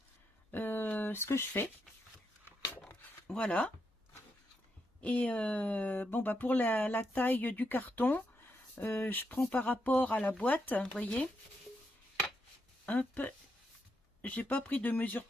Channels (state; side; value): normal; both; correlation 0.81